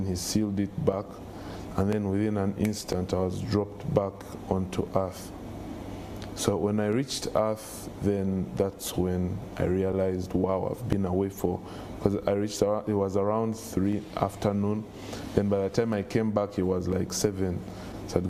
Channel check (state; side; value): identical; both; correlation 1.00